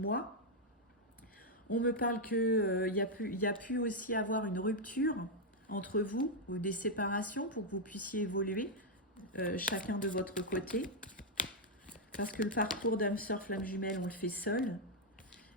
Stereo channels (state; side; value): normal; both; correlation -0.01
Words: On me parle qu'il y a pu aussi avoir une rupture entre vous ou des séparations pour que vous puissiez évoluer chacun de votre côté. Parce que le parcours d'âme sœur flamme jumelle, on le fait seul.